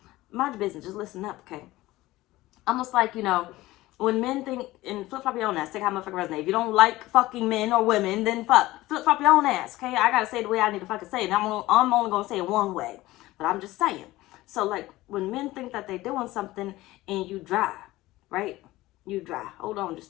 Mind your business, just listen up, okay? Almost like, you know, when men think, and flip-flop your own ass, take how motherfucker resonate. If you don't like fucking men or women, then flip-flop your own ass, okay? I gotta say it the way I need to fucking say it. And I'm only gonna say it one way, but I'm just saying. So, like, when men think that they're doing something and you dry, right? You dry. Hold on, just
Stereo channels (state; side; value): quieter; right; 17.8 dB